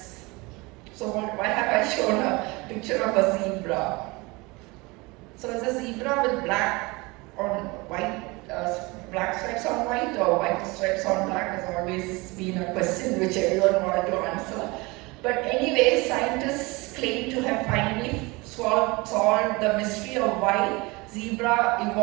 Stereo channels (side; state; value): left; quieter; 24.6 dB